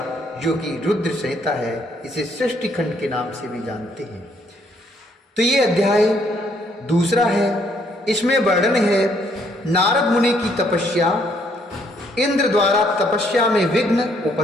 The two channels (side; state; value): both; normal; correlation 0.68